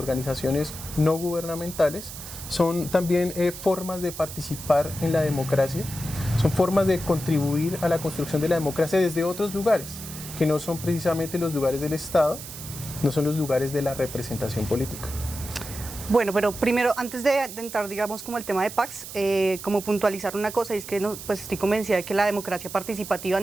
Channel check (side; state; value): right; noise; hiss, 11 dB below the sound